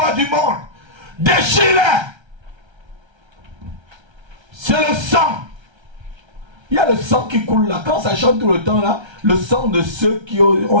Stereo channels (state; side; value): late; left; 1.3 ms